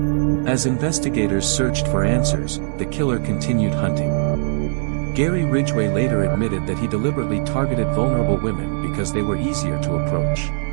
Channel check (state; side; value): silent; left; digital silence